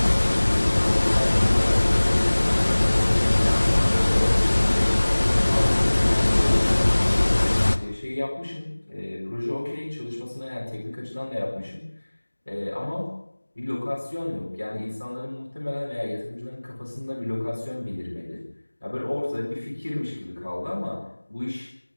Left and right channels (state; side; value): inverted; both; correlation -1.00